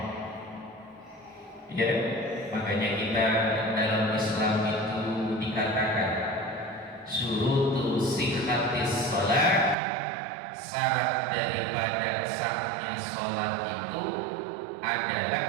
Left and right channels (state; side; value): drops out; left; at 9.8 s